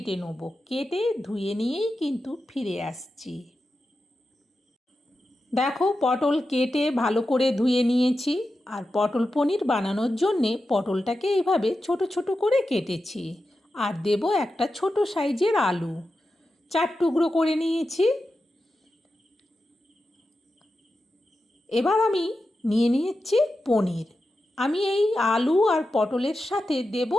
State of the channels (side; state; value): both; normal; correlation 0.91